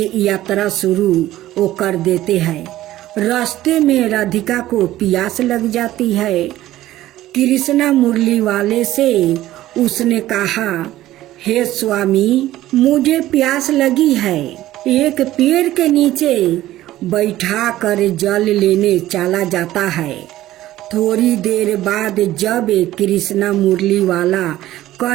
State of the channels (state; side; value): quieter; left; 14.8 dB